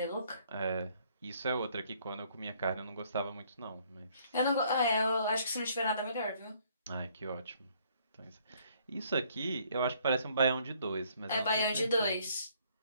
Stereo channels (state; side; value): inverted; both; correlation -0.64